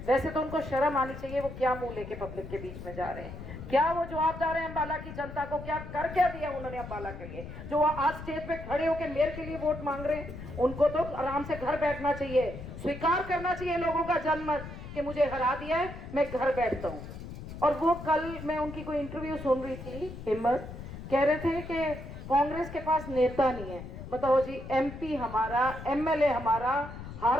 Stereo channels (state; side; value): noise; left; rumble, 11 dB below the sound